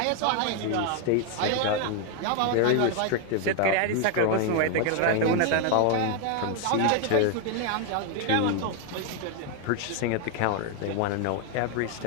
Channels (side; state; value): both; different; correlation 0.01